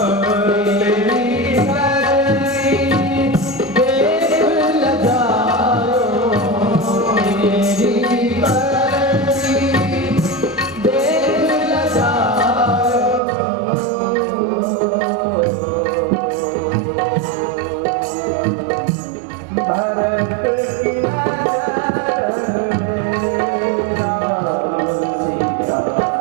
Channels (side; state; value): left; drops out; at 13.2 s